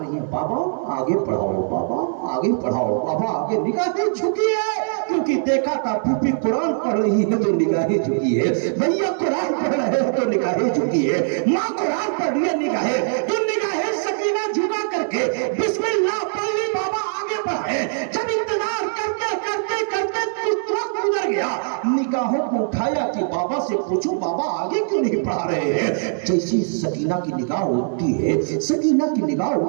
ہیں بابا آگے پڑھاؤ، بابا آگے پڑھاؤ، بابا آگے، نگاہیں جھکی ہے کیونکہ دیکھا تھا پھوپھی قرآن پڑھ رہی ہے تو نگاہیں جھکی ہے، بھیا قرآن پڑھ رہے ہیں تو نگاہیں جھکی ہے، ماں قرآن پڑھ رہی ہے نگاہیں، جو نگاہیں سکینہ جھکا کر کے بسم اللہ پڑھ لی، بابا آگے بڑھے، جب انتظار کرتے کرتے کرتے وقت گزر گیا، نگاہوں کو اٹھایا کہ بابا سے پوچھو بابا آگے کیوں نہیں پڑھا رہے ہیں؟ جیسی سکینہ کی نگاہ اٹھتی ہے، سکینہ کی نگاہ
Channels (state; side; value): silent; left; digital silence